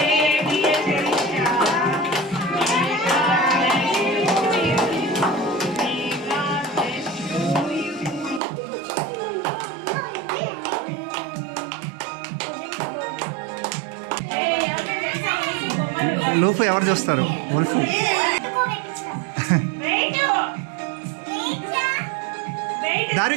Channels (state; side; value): drops out; left; at 8.4 s